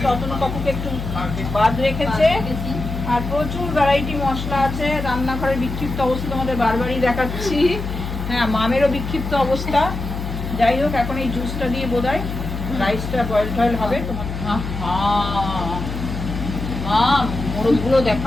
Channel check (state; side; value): noise; left; hum, 6 dB below the sound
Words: অতনু কাকুকে একটু বাদ রেখেছে। আর প্রচুর ভ্যারাইটি মশলা আছে। রান্নাঘরের বিক্ষিপ্ত অবস্থা তোমাদের বারবারই দেখাচ্ছি। হ্যাঁ, মামেরও বিক্ষিপ্ত অবস্থা। যাই হোক, এখন এই জুসটা দিয়ে বোধহয় রাইসটা বয়েল টয়েল হবে। তোমার মাম মোরগগুলো